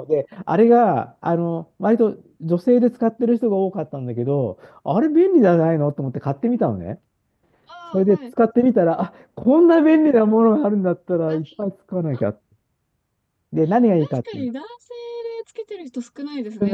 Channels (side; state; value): both; identical; correlation 1.00